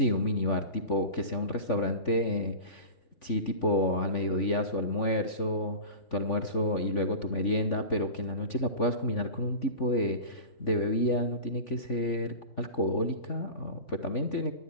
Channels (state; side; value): late; right; 3.5 ms